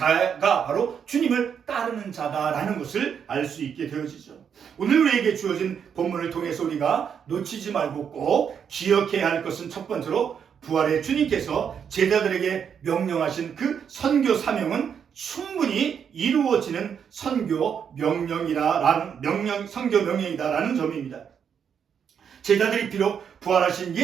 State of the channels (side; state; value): left; quieter; 7.6 dB